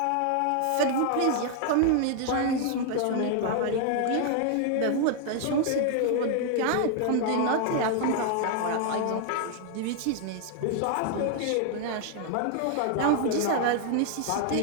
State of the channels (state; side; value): different; both; correlation 0.00